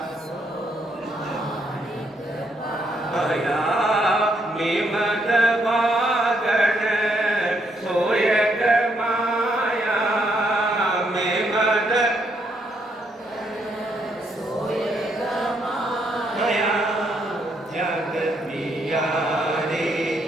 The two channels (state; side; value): normal; both; correlation 0.74